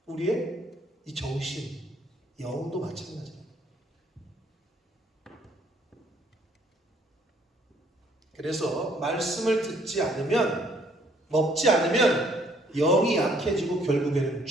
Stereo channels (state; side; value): normal; both; correlation 0.64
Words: 우리의 이 정신, 영도 마찬가지예요. 그래서 말씀을 듣지 않으면, 먹지 않으면 영이 약해지고 결국에는